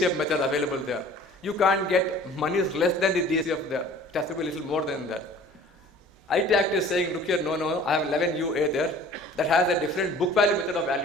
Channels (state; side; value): normal; both; correlation 0.48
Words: method available there. You can't get monies less than the DCF there. It has to be a little more than that. IT Act is saying, look here, no, I have 11UA there that has a different book value method of